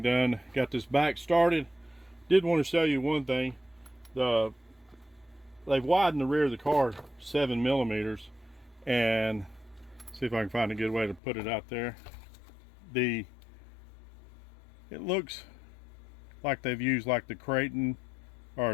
done. Got this back started. Did want to show you one thing. They've widened the rear of the car 7 millimeters, and see if I can find a good way to put it out there. It looks like they've used like the Creighton or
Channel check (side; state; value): right; drops out; at 11.2 s